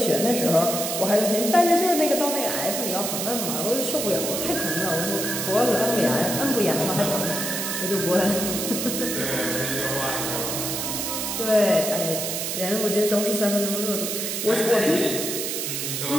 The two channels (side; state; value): right; noise; hiss, 2 dB below the sound